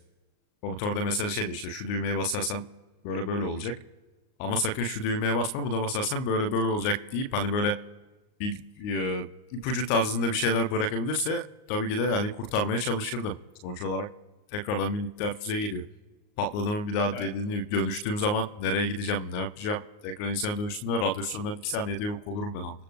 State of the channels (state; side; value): late; right; 38 ms